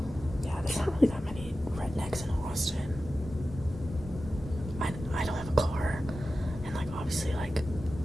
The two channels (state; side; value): normal; both; correlation 0.93